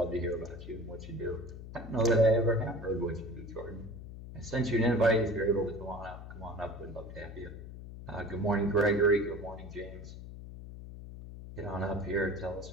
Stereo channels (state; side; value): noise; left; hum, 12 dB below the sound